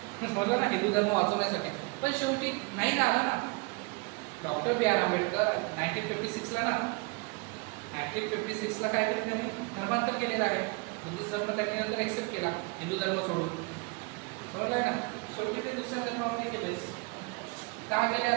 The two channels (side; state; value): left; quieter; 28.9 dB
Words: समजलं ना, हिंदू धर्म वाचवण्यासाठी. पण शेवटी नाही ना आला ना. डॉक्टर बी आर आंबेडकर 1956ला ना, 1956ला काय केलं त्यांनी, धर्मांतर केलेलं आहे. बुद्धिस्ट धर्म त्यांनी नंतर एक्सेप्ट केला, हिंदू धर्म सोडून. समजलं आहे ना. शेवटी ते दुसऱ्या धर्मामध्ये गेलेच. काय गेले